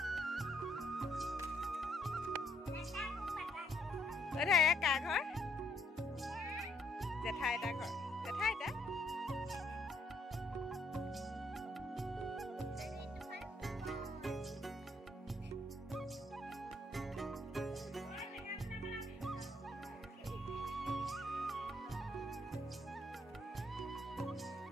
কা ঘৰ জেঠাই এটা ঘৰ জেঠাই এটা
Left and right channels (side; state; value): both; normal; correlation 0.71